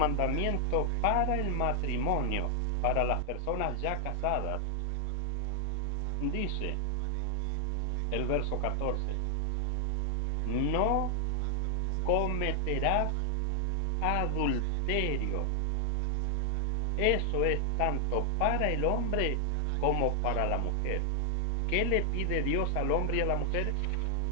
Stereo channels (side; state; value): both; different; correlation 0.00